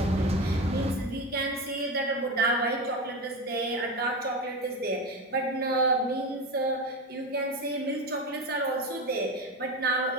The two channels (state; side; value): normal; both; correlation 0.21